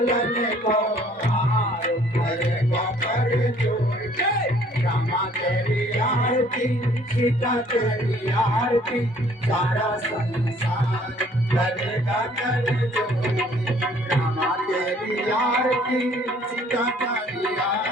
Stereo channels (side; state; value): both; normal; correlation 0.58